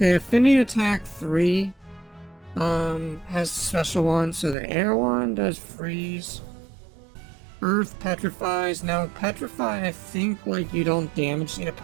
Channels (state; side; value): drops out; left; at 4.5 s